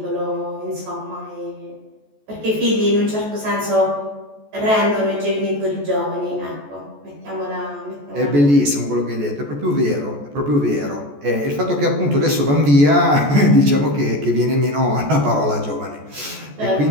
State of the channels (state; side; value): late; left; 14 ms